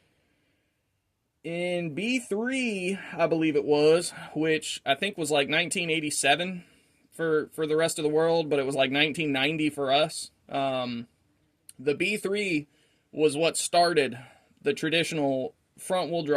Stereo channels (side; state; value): both; identical; correlation 1.00